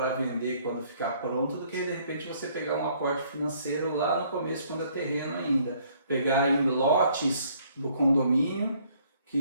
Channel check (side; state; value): both; inverted; correlation -0.63